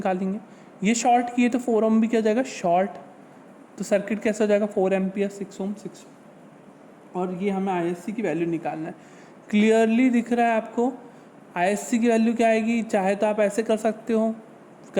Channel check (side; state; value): both; identical; correlation 1.00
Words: ये शॉर्ट किए तो 4 ओम भी क्या हो जाएगा, शॉर्ट, तो सर्किट कैसा हो जाएगा, 4 एम्पियर, 6 ओम, 6। और ये हमें ISC की वैल्यू निकालना है। क्लियरली दिख रहा है आपको ISC की वैल्यू क्या आएगी, चाहे तो आप ऐसे कर सकते हो